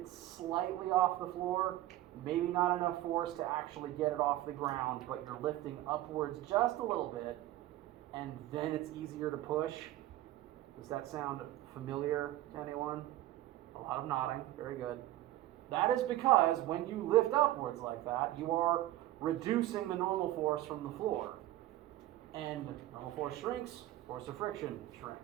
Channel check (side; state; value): left; quieter; 15.1 dB